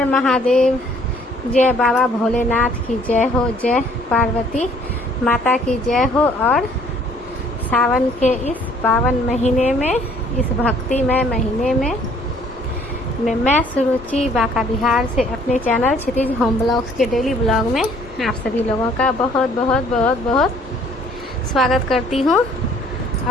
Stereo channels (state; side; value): normal; both; correlation 0.59